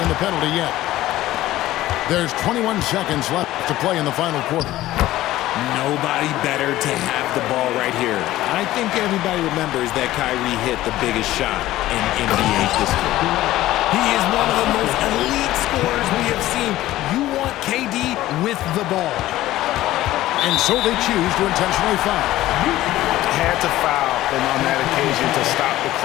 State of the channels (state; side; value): quieter; right; 15.4 dB